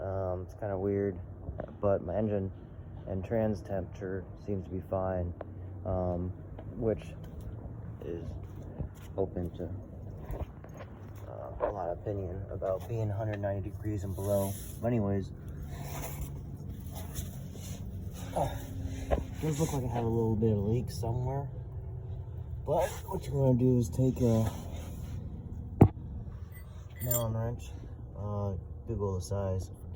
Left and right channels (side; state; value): both; identical; correlation 1.00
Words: kind of weird, but my engine and trans temperature seems to be fine, which is open to a lot of opinion about being 190 degrees and below. But anyways, does look like I have a little bit of leak somewhere, but what you're going to do is take a Allen wrench, Google the size, I